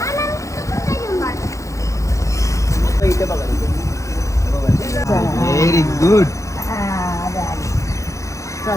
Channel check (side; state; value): right; late; 0.15 ms